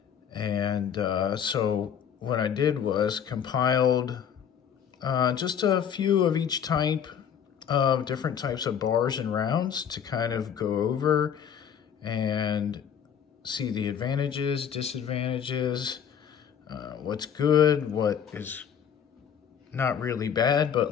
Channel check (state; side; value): quieter; right; 8.3 dB